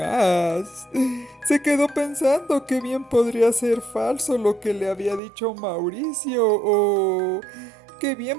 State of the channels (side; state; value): left; drops out; at 5.2 s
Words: Se quedó pensando que bien podría ser falso lo que le había dicho Mauricio, o que